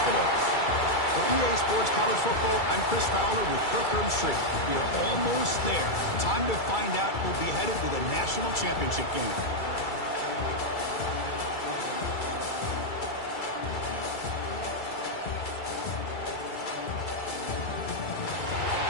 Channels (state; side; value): late; right; 2.3 ms